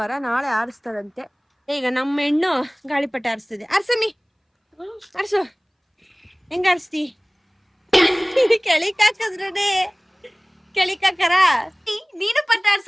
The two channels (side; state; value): both; identical; correlation 1.00